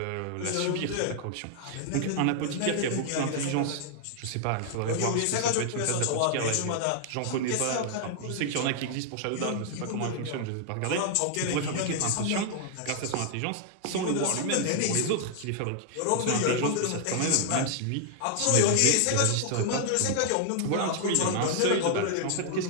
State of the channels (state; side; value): different; both; correlation 0.00